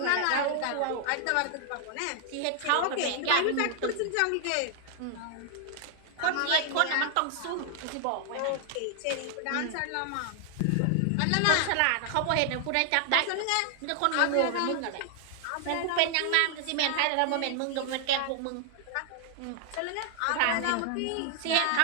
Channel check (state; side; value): different; both; correlation 0.00